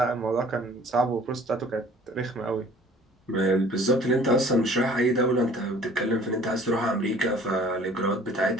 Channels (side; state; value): both; normal; correlation 0.51